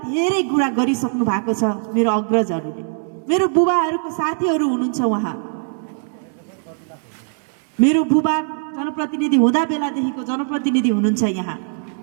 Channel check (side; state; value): left; silent; digital silence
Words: धेरै कुरा गरिसक्नु भएको छ मेरो अग्रजहरूले। मेरो बुबाहरूको साथीहरू हुनुहुन्छ, उहाँ मेरो बुबा जनप्रतिनिधि हुँदा बेलादेखिको जनप्रतिनिधि हुनुहुन्छ यहाँ।